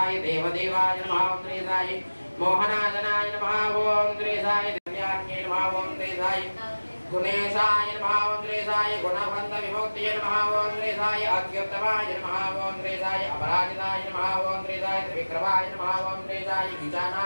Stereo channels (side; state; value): both; inverted; correlation -1.00